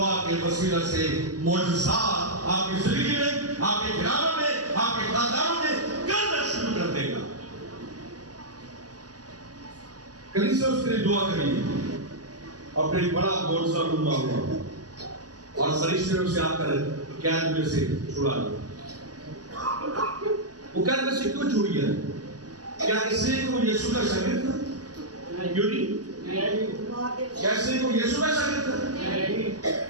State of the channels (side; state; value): left; late; 0.68 ms